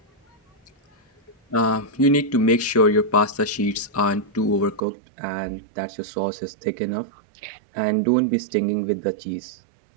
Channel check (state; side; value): drops out; left; at 4.8 s